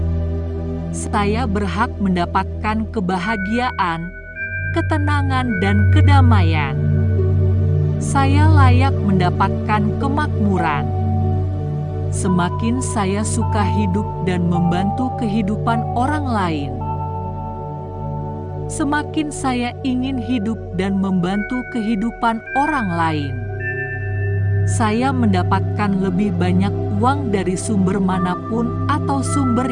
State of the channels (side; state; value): both; identical; correlation 1.00